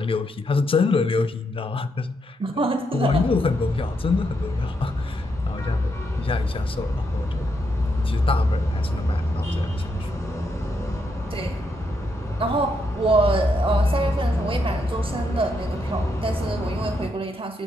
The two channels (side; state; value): both; normal; correlation 0.79